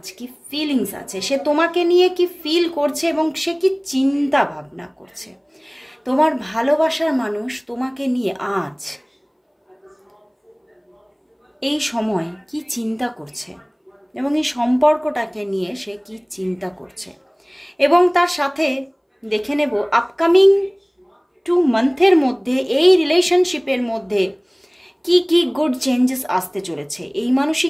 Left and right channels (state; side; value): identical; both; correlation 1.00